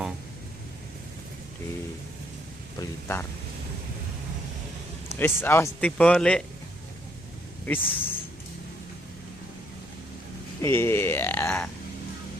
di Blitar. Wis awas tiba lek. Wis. Iya.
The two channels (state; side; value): noise; left; rumble, 22 dB below the sound